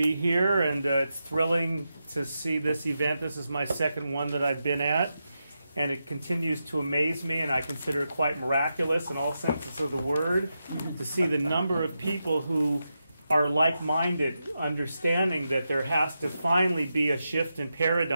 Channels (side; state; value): both; inverted; correlation -0.88